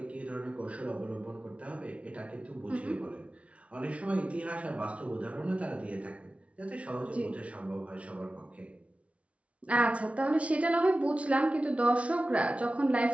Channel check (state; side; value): late; left; 0.063 ms